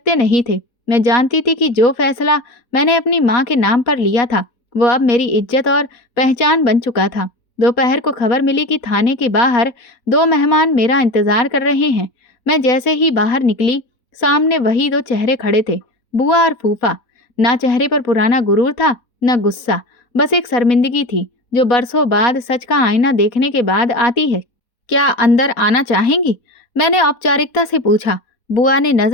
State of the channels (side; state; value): right; late; 4.1 ms